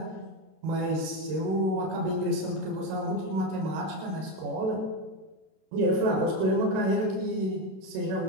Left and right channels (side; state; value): left; late; 32 ms